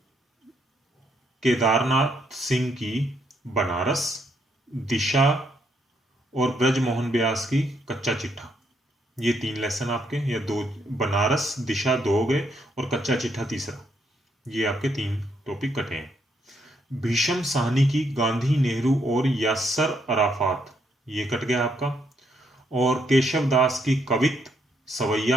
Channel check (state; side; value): normal; both; correlation 0.74